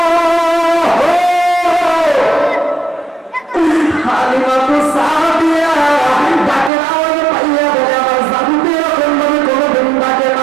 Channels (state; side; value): drops out; left; at 6.7 s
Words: হালিমাতুস সাদিয়া ডাকের আওয়াজ পাইয়া বলে আমার জাদুতে এরকম ভাবে কোনোদিন ডাকে